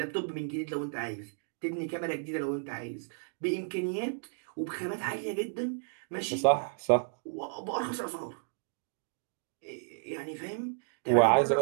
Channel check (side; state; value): left; silent; digital silence